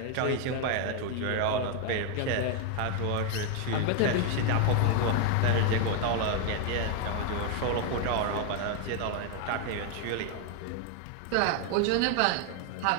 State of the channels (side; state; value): both; different; correlation 0.01